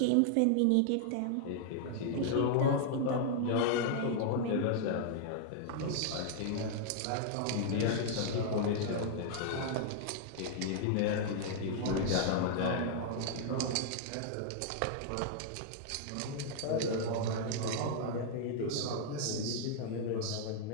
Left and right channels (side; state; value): both; different; correlation -0.01